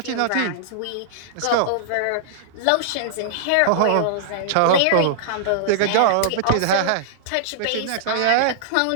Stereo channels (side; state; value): both; different; correlation -0.01